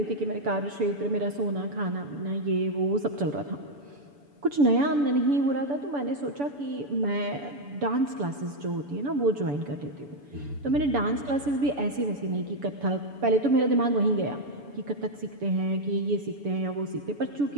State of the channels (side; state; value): left; late; 7.0 ms